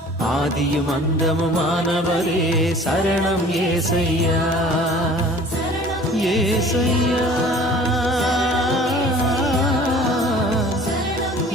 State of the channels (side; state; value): both; normal; correlation 0.48